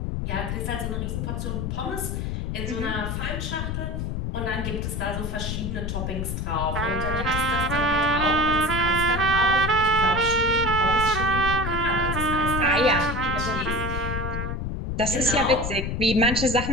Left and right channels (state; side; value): noise; left; rumble, 3 dB below the sound